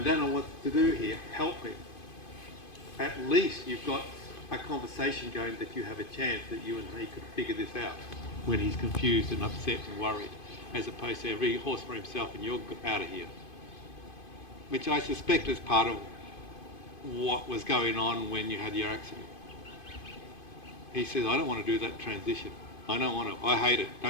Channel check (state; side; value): late; right; 2.5 ms